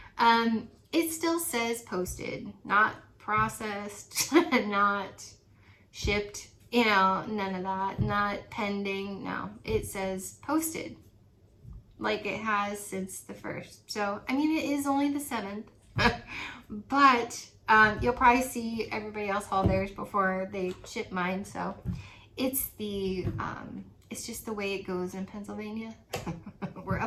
it still says posted, not processed, not shipped, you know, none of that, not pending, no, it says posted, like it has since the 1st. So, I mean, it is only the 7th, but you'll probably see everybody else haul theirs before they ship mine. So it's it's just the way it goes in Pennsylvania. We're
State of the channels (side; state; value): both; identical; correlation 1.00